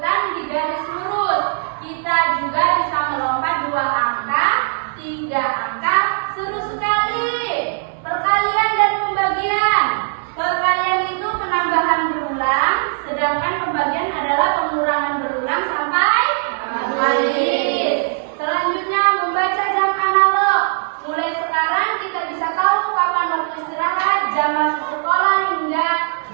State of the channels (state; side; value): silent; left; 60 dB below the other